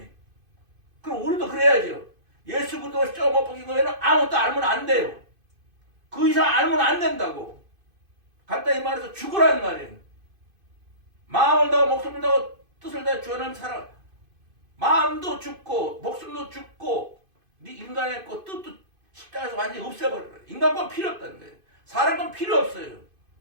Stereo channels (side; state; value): left; late; 2.5 ms